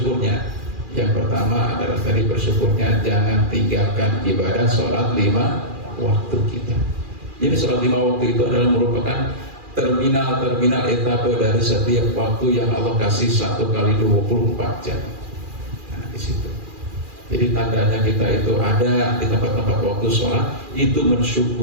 Yang pertama adalah tadi bersyukurnya jangan tinggalkan ibadah sholat 5 waktu kita. Jadi sholat 5 waktu itu adalah merupakan terminal etapa dari setiap waktu yang Allah kasih 1 kali 24 jam. Nah di situ. Jadi tandanya kita itu ada di tempat-tempat waktu sholat itu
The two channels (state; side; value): late; left; 2.4 ms